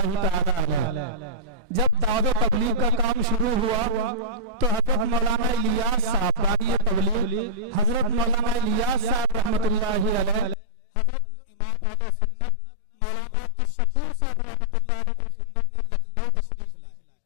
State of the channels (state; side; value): drops out; right; at 10.6 s